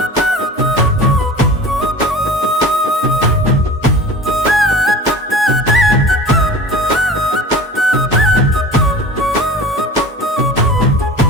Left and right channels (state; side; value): normal; both; correlation 0.39